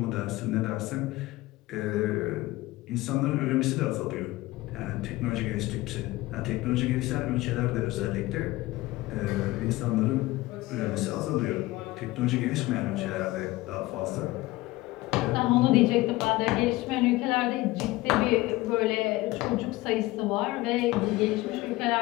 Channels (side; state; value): right; quieter; 19.1 dB